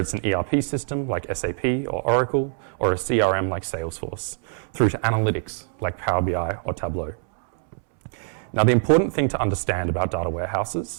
an ERP system like SAP or Oracle, or a CRM like Salesforce, through to analytics like Power BI or Tableau. Now, the important thing to understand about data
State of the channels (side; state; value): left; silent; 63 dB below the other